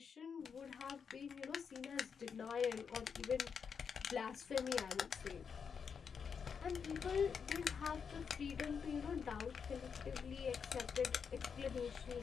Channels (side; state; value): right; quieter; 6.4 dB